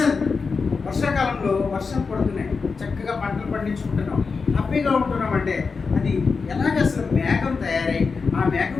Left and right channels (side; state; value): right; quieter; 4.9 dB